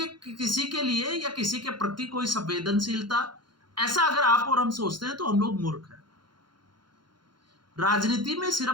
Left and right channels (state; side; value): late; left; 0.72 ms